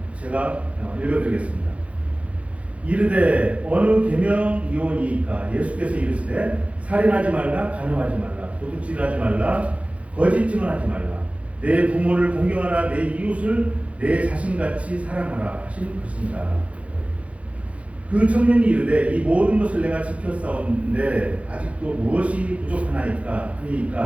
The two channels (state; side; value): late; left; 0.064 ms